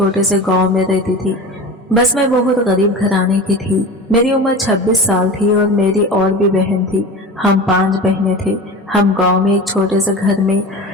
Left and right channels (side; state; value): both; normal; correlation 0.32